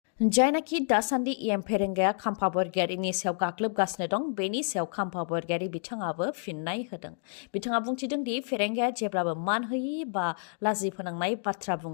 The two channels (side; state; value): right; silent; 58 dB below the other